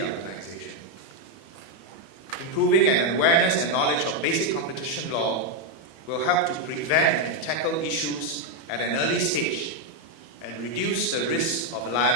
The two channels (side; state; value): right; late; 31 ms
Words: organization. Improving an awareness and knowledge of basic competition law will help to prevent and tackle issues at an early stage and reduce the risk of